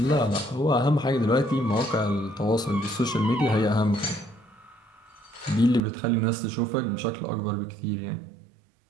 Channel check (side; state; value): left; drops out; at 5.8 s